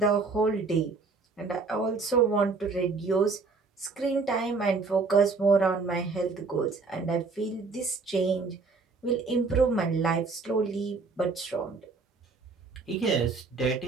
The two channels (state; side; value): quieter; left; 4.3 dB